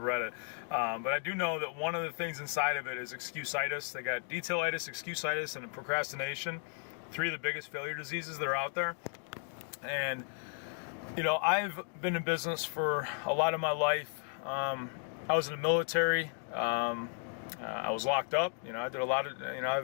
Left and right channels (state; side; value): silent; right; 55 dB below the other